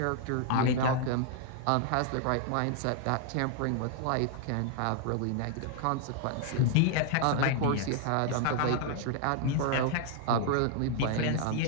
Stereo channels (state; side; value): different; both; correlation 0.00